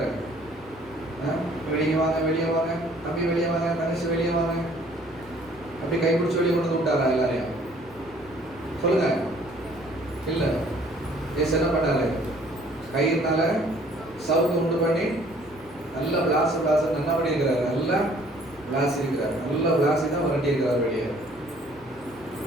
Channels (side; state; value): both; normal; correlation 0.58